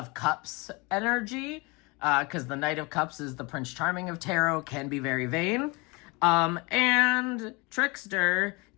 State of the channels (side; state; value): right; quieter; 27.2 dB